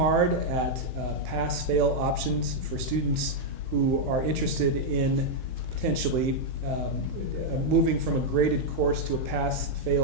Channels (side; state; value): left; late; 16 ms